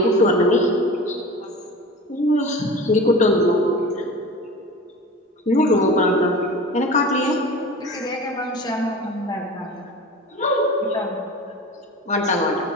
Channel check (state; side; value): normal; both; correlation 0.35